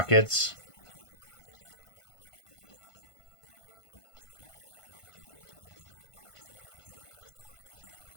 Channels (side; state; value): right; late; 1.5 ms